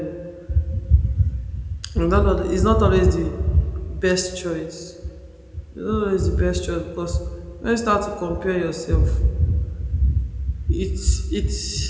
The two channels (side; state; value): both; identical; correlation 1.00